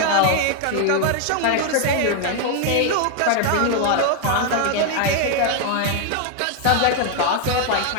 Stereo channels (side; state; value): both; different; correlation 0.00